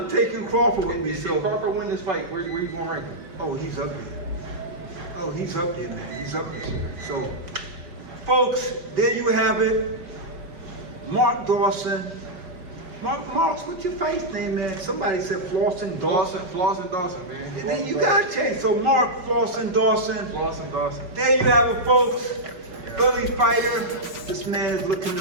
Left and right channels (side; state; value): left; late; 5.4 ms